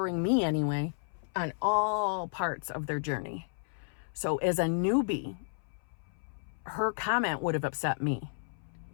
me anyway, on all parts of their journey. So as a newbie, her comment would have upset me.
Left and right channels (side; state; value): right; silent; 56 dB below the other